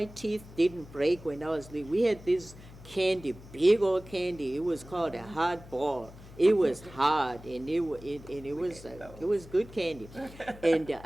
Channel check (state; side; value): noise; left; hum, 18 dB below the sound